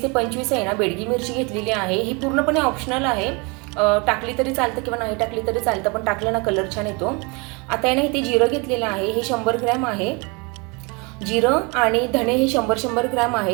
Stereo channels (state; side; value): quieter; left; 29.5 dB